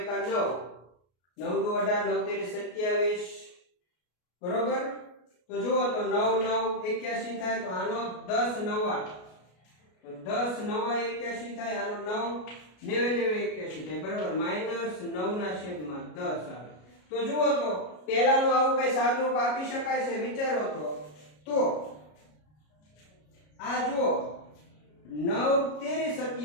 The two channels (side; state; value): right; late; 33 ms